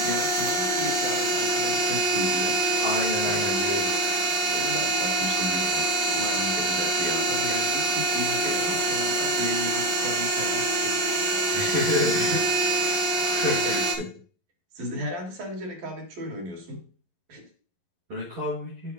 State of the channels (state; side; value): late; left; 11 ms